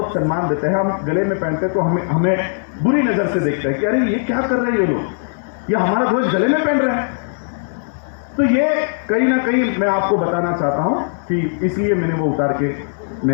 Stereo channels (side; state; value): right; silent; digital silence